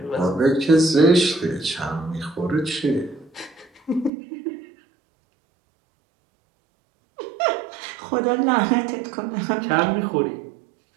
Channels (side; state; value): left; drops out; at 4.1 s